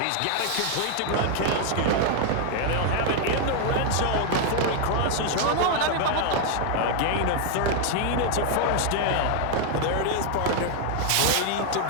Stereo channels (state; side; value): different; both; correlation 0.00